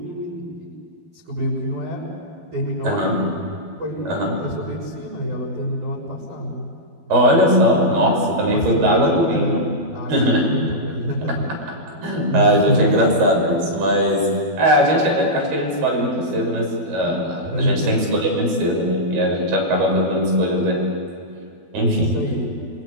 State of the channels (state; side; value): late; left; 12 ms